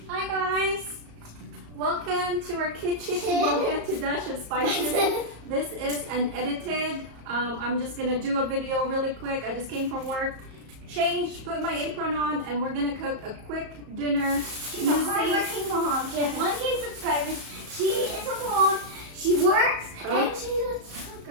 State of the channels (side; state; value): left; late; 34 ms